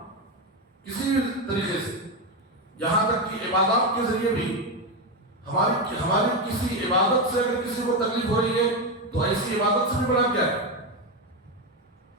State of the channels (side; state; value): both; normal; correlation 0.11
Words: کسی بھی طریقے سے. یہاں تک کہ عبادات کے ذریعے بھی ہماری کسی عبادت سے اگر کسی کو تکلیف ہو رہی ہے تو ایسی عبادت سے بھی بڑا کیا ہے.